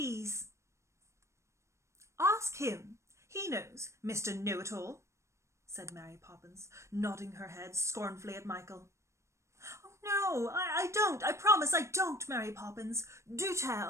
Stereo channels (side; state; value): left; late; 0.14 ms